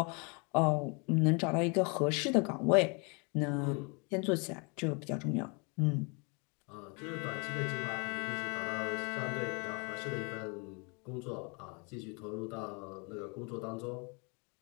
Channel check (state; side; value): quieter; right; 32.9 dB